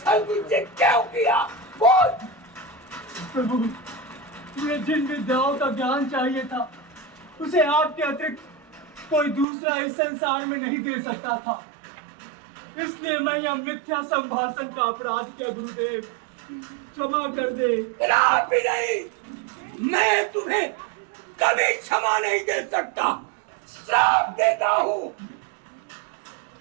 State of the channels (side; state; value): left; drops out; at 9.5 s